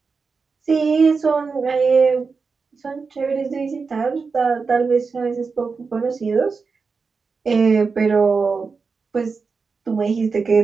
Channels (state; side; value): quieter; left; 4.8 dB